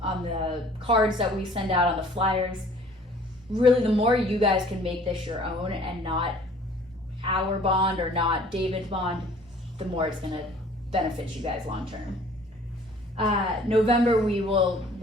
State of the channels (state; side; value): normal; both; correlation 0.53